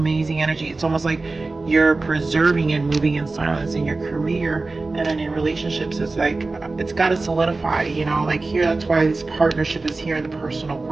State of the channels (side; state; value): left; quieter; 3.5 dB